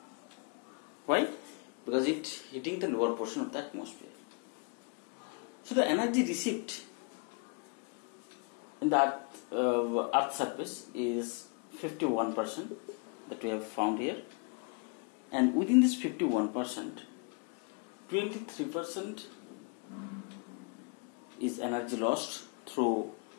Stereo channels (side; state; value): right; quieter; 33.9 dB